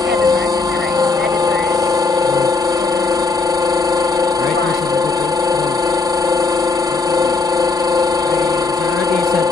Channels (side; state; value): right; quieter; 3.9 dB